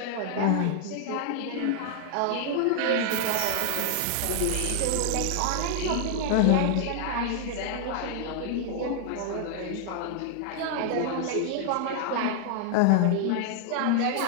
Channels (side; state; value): both; different; correlation 0.00